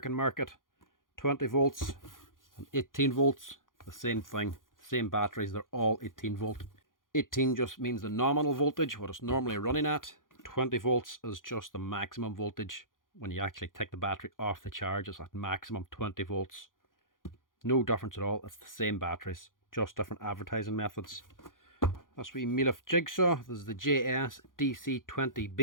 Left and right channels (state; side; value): late; right; 0.90 ms